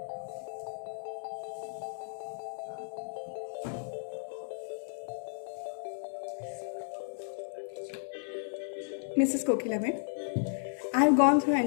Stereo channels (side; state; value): right; silent; 55 dB below the other